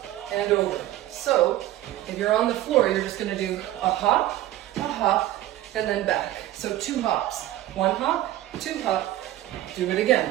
and over. So if you're on the floor, you're just going to do a hop, and then back. So 2 hops. 1 hop, 2 hop. Do it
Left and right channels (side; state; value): left; quieter; 14.4 dB